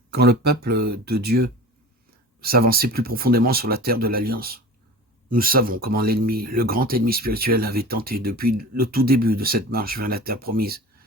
Quand le peuple de Dieu s'avançait plus profondément sur la terre de l'Alliance, nous savons comment l'ennemi, le grand ennemi spirituel, avait tenté depuis le tout début de cette marche vers la terre promise,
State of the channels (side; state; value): both; normal; correlation 0.36